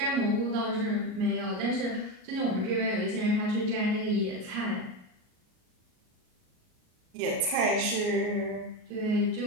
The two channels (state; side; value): late; left; 38 ms